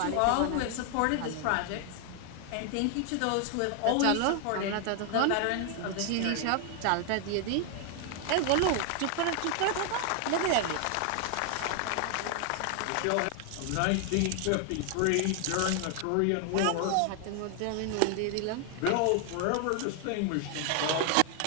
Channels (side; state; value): both; different; correlation 0.00